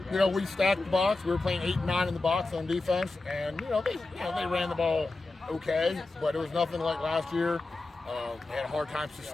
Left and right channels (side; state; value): right; quieter; 3.3 dB